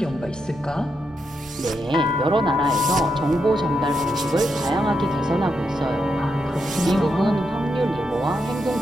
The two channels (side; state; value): both; normal; correlation 0.83